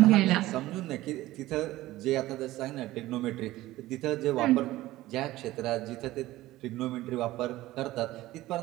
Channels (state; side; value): quieter; left; 16.7 dB